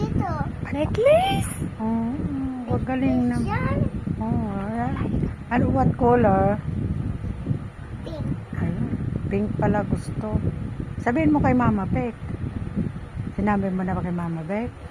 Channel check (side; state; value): both; identical; correlation 1.00